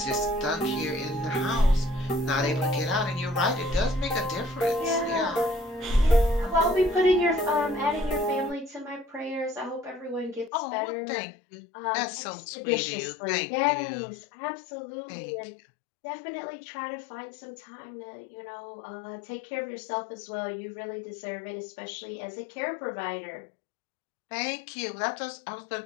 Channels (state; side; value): drops out; right; at 10.5 s